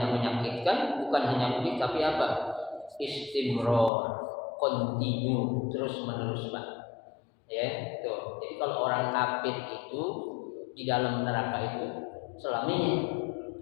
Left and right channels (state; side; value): drops out; right; at 3.9 s